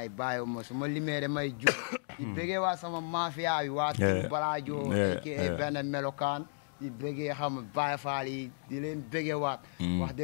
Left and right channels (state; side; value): silent; right; digital silence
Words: bàyyiwuma su ma limee may juum di bëggee waa sama mafia yi waa Tim Baladio aka benn melokaan di bëggee xam Baay Faal yi di leen bëggee waat wax